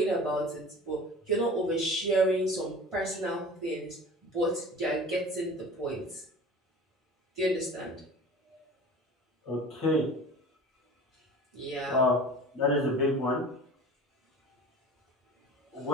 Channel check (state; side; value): normal; both; correlation 0.40